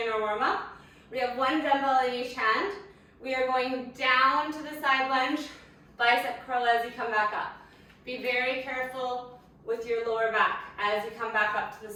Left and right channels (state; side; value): identical; both; correlation 1.00